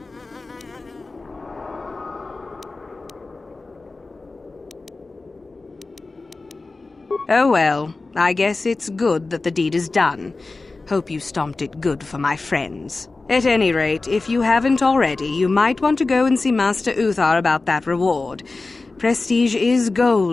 Oh well, I guess it's good that the deed is done. Hope you stomped it good for my friends. At any rate, if you haven't already, you might want to go and see Master Uthar about that reward. Prestige is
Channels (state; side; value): quieter; right; 3.6 dB